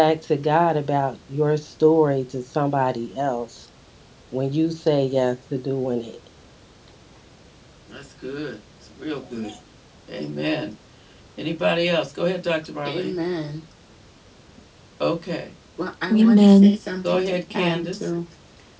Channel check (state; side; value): identical; both; correlation 1.00